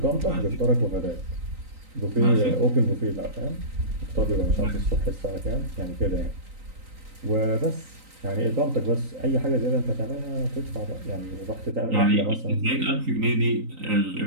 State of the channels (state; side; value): late; left; 3.9 ms